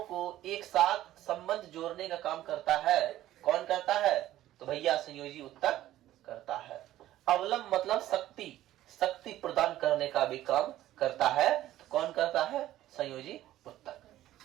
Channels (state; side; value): quieter; left; 14.0 dB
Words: को एक साथ संबंध जोड़ने का काम करता है। कौन करता है? तो भैया संयोजी उत्तक करता है। अवलंब मतलब शक्ति, शक्ति प्रदान करने का भी काम करता है। तो कौन करता है? संयोजी